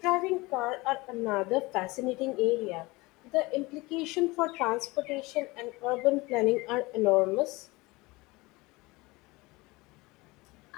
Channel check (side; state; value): right; quieter; 22.8 dB